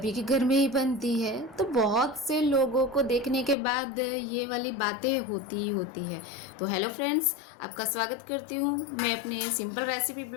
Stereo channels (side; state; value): right; drops out; at 3.6 s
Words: के घर में ही बनती है। तो बहुत से लोगों को देखने के बाद ये वाली बातें होती ही होती है। तो हेलो फ्रेंड्स, आपका स्वागत करती हूँ मैं अपने सिंपल रेसिपी